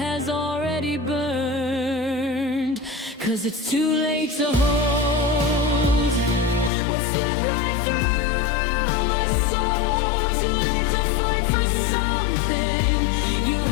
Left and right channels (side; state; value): right; drops out; at 6.7 s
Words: already burned. 'Cause it's too late to hold what slipped right through my soul. Too late to fight for something you